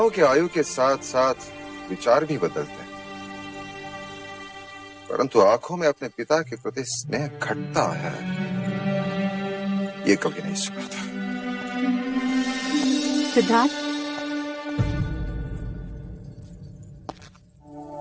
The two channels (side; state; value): both; identical; correlation 1.00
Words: कि आयु के साथ साथ विचार भी बदलते हैं, परंतु आंखों में अपने पिता के प्रति स्नेह घटता है, ये कभी नहीं सुना था। सिद्धार्थ,